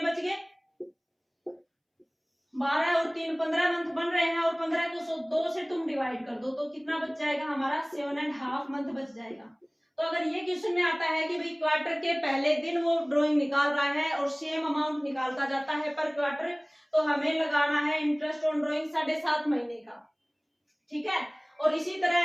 बच गए, 12 और 3 15 मंथ बन रहे हैं, और 15 को 2 से तुम डिवाइड कर दो तो कितना बच जाएगा हमारा, 7.5 मंथ बच जाएगा। तो अगर ये क्वेश्चन में आता है कि भाई क्वार्टर के पहले दिन वो ड्राइंग निकाल रहा है और सेम अमाउंट निकालता जाता है पर क्वार्टर, तो हमें लगाना है इंटरेस्ट ऑन ड्राइंग 7.5 महीने का। ठीक है, और इसी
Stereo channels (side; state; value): both; identical; correlation 1.00